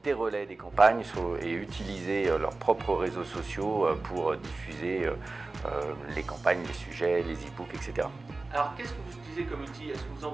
des relais des campagnes et utiliser leurs propres réseaux sociaux pour diffuser les campagnes, les sujets, les e-books, etc. Alors qu'est-ce que vous utilisez comme outil? Est-ce que vous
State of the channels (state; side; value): quieter; left; 3.4 dB